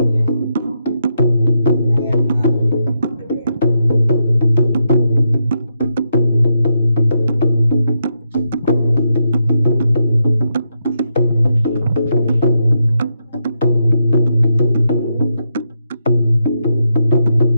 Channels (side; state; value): both; inverted; correlation -0.82